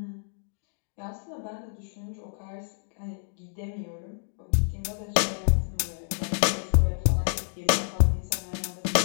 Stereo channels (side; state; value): right; silent; digital silence